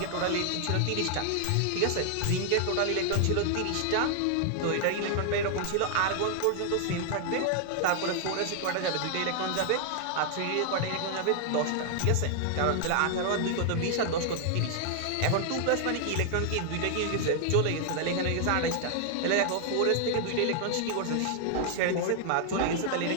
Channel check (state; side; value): different; both; correlation 0.00